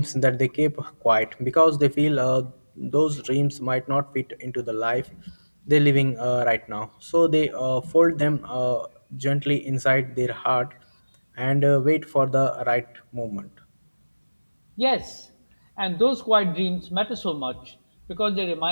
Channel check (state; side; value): inverted; both; correlation -1.00